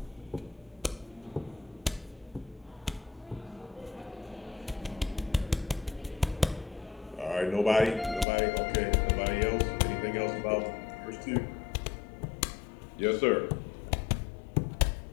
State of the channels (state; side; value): drops out; right; at 8.2 s